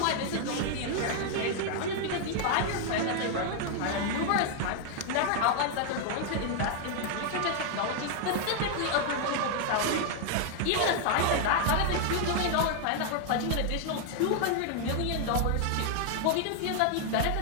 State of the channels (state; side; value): different; both; correlation 0.00